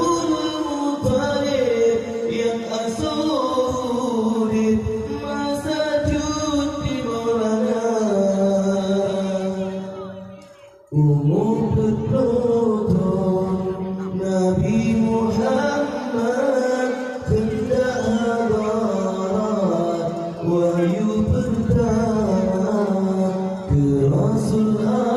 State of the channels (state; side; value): identical; both; correlation 1.00